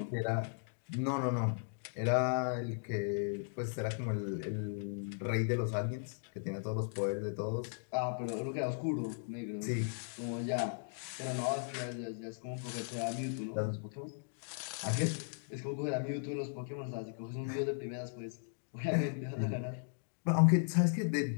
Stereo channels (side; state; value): right; silent; digital silence